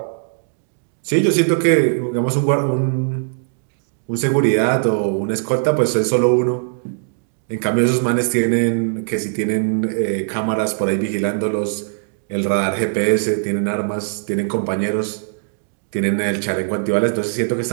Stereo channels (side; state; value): left; silent; digital silence